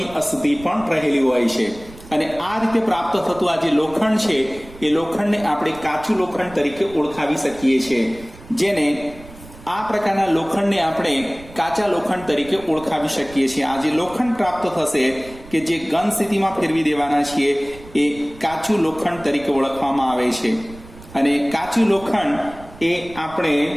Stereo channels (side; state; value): right; noise; rumble, 19 dB below the sound